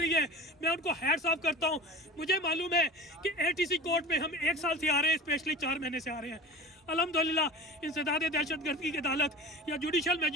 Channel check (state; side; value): normal; both; correlation 0.36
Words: है मैं उनको हैट्स ऑफ करता हूँ। मुझे मालूम है कि एटीसी कोर्ट में हम 1 साल से आ रहे हैं, स्पेशली 4 महीने से आ रहे हैं। अल्हम्दुलिल्लाह इंसदाद दहशतगर्दी की अदालत या जुडिशल